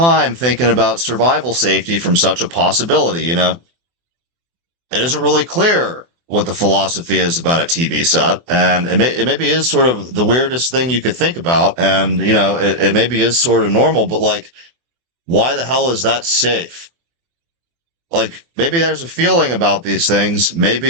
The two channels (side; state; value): left; late; 24 ms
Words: thinking about survival safety from such a possibility, you know? It isn't really clear what the philosophy is about a TV set, and it maybe is sort of the weirdest thing you could think about, and, you know, it maybe is sort of normal, but like, why the hell is that safe? Like, maybe there's a feeling about these things,